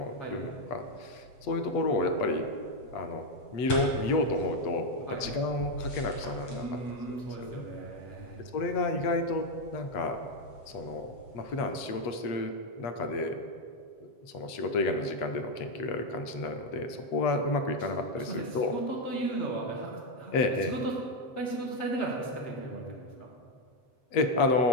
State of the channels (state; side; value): late; right; 7.9 ms